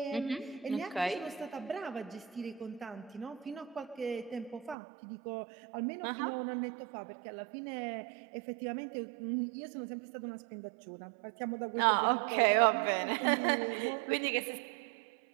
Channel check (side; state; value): left; drops out; at 4.8 s